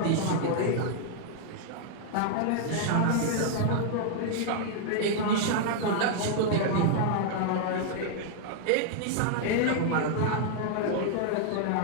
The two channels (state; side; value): different; both; correlation 0.00